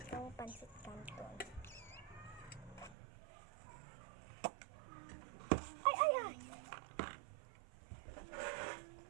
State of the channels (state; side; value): drops out; left; at 3.0 s